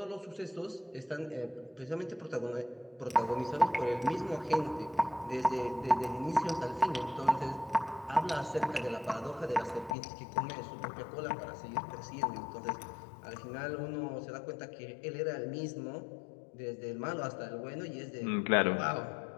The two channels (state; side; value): drops out; right; at 10.0 s